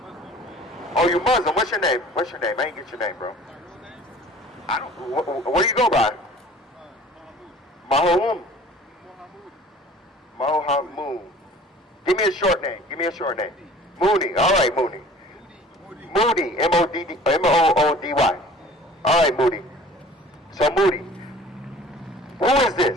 Oh, you Muslim. What's your name? I ain't get your name, bro. I don't. What do you go by? Mahoud. Give me a short name. Mooney. All right, Mooney. Moody. M-O-O-D-Y. All right, Moody. So Moody, who is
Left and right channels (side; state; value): both; normal; correlation 0.47